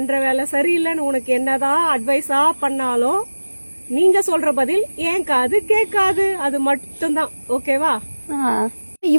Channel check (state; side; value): inverted; both; correlation -1.00